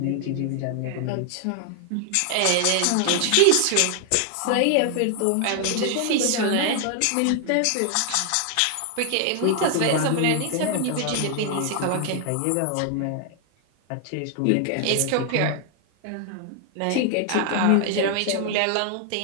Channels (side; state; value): both; different; correlation 0.00